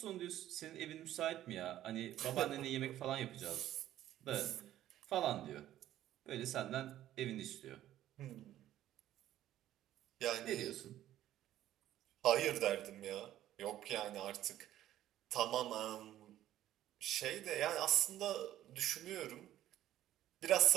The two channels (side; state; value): left; quieter; 12.9 dB